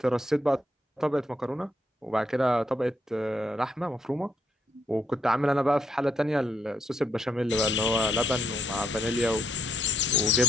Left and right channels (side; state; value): both; normal; correlation 0.75